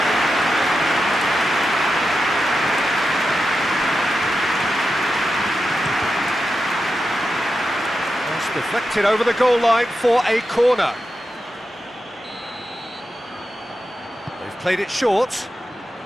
That's deflected over the goal line for a corner. They've played it short.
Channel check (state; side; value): normal; both; correlation 0.89